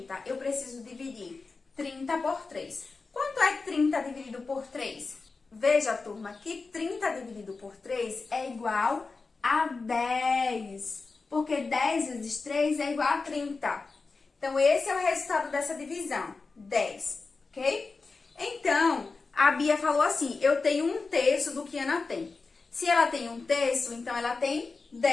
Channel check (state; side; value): quieter; right; 4.1 dB